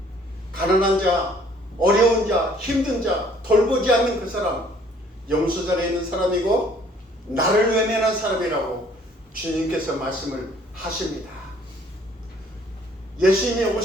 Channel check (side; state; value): both; normal; correlation 0.59